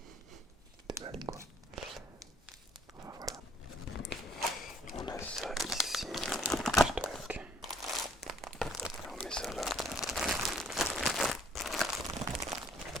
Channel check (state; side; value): normal; both; correlation 0.61